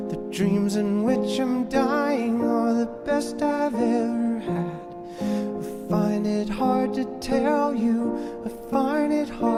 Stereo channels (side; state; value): both; identical; correlation 1.00